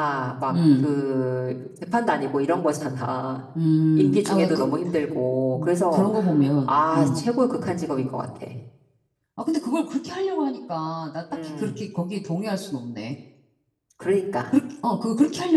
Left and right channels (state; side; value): identical; both; correlation 1.00